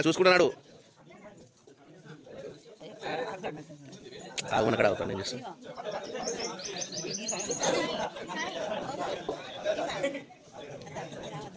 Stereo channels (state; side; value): identical; both; correlation 1.00